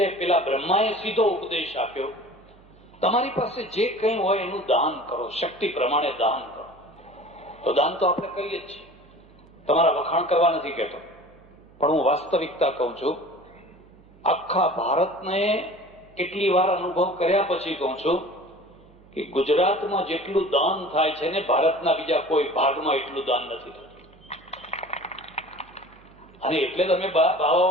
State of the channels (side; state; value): right; noise; hum, 27 dB below the sound